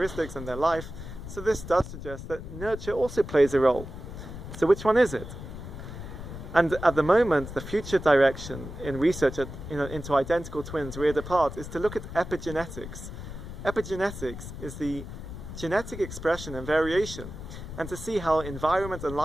and their life. So this does suggest that nurture also plays a role. So which one is it? And at the moment, the future direction in research into identical twins reared apart is to look at epigenetics. Epigenetics is the genetic expression and variation, and to see how environment and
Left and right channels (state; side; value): noise; left; rumble, 10 dB below the sound